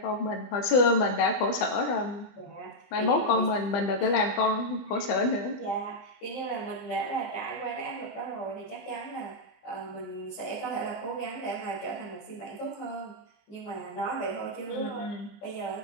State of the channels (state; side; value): late; right; 20 ms